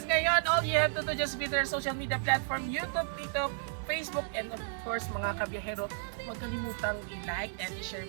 ngayon, all you have to do just be their social media platform, YouTube, TikTok, Facebook, and of course mga kabiyahero, huwag kalimutang i-like and i-share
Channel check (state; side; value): silent; left; digital silence